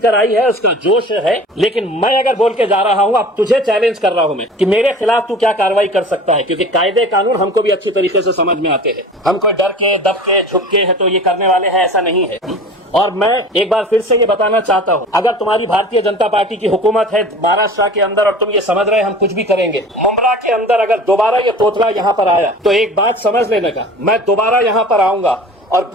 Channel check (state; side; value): normal; both; correlation 0.40